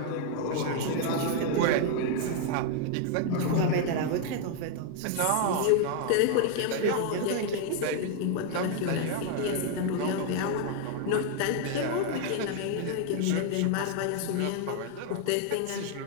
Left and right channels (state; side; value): different; both; correlation 0.00